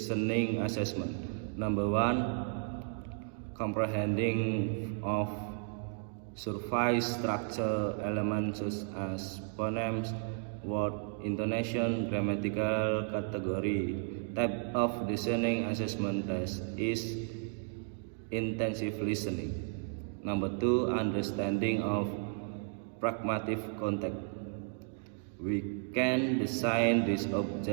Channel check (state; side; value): silent; left; 55 dB below the other